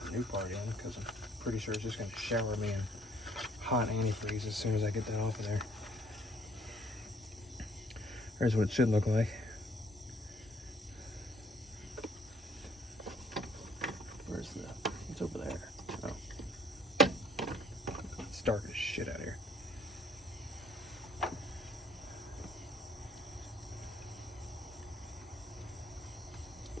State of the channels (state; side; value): normal; both; correlation 0.62